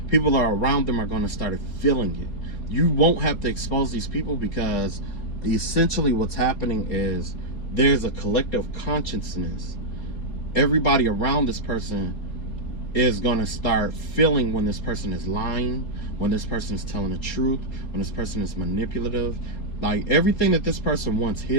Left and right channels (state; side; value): late; right; 4.3 ms